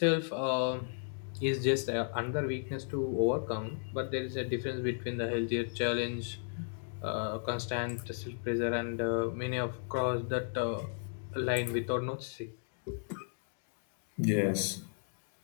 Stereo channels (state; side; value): silent; right; digital silence